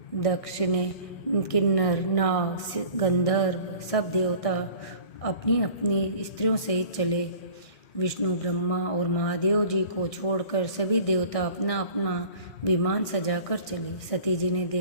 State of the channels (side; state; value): right; late; 1.6 ms